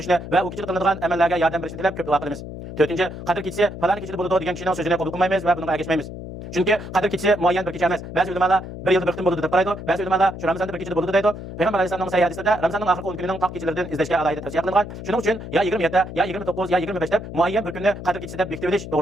va u kechida qilinadigan amallarga yordam berishni tilab ko'p duo qilamiz. To'rtinchi, qadr kechisi falon kechida bo'ladi degan kishining so'zini qabul qilmaymiz va bunga ergashmaymiz. Chunki qadr kechisi muayyan bir kecha emas. Ba'zi ulamolar bir yilda bir qitim bo'ladi deb qaraydi, ba'zi ulamolar shu Ramazonda bir kechada bo'ladi deydi. Payg'ambar alayhisolamning sahih hadisida Ramazonning oxirgi 10 kunining taq kechalaridan izlashga alohida tavsiya qilingan. Shuning uchun ya 27, ya 29, ya 25 deb muayyan bir kunni qadr kechisi deb bekitib olish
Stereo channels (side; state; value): left; noise; hum, 10 dB below the sound